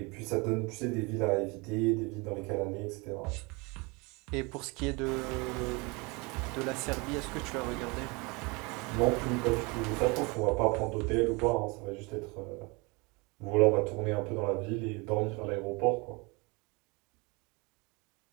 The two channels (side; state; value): left; quieter; 27.6 dB